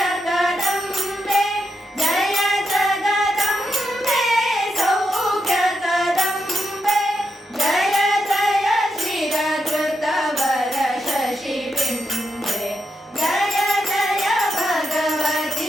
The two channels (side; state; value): both; normal; correlation 0.84